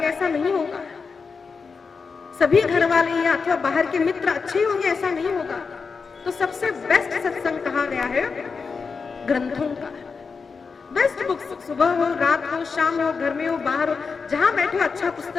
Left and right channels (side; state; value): right; quieter; 5.1 dB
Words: ऐसा नहीं होगा। सभी घर वाले या अथवा बाहर के मित्र अच्छे होंगे, ऐसा नहीं होगा। तो सबसे बेस्ट सत्संग कहा गया है, ग्रंथों का। बेस्ट बुक्स, सुबह हो, रात हो, शाम हो, घर में हो, बाहर हो, जहां बैठो अच्छा